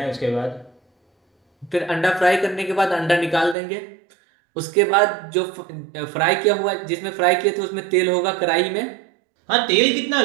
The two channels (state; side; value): drops out; left; at 3.6 s